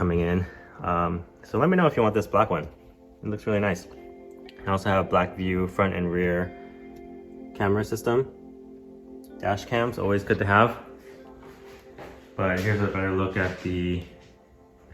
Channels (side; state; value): both; identical; correlation 1.00